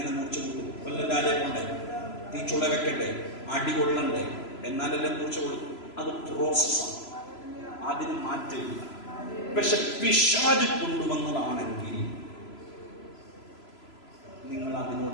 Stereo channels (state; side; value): late; right; 3.0 ms